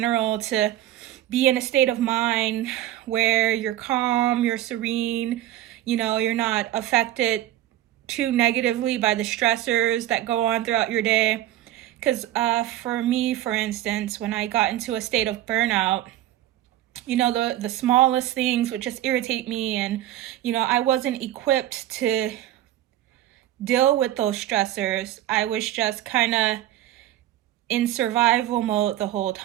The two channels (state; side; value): quieter; left; 13.4 dB